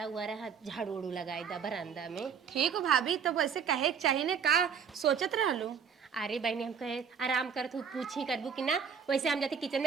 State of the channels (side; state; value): left; quieter; 6.9 dB